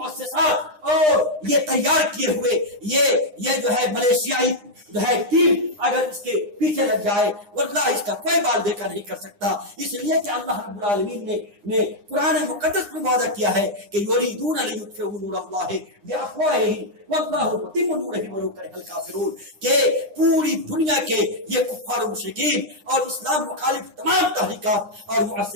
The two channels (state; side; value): late; left; 9.8 ms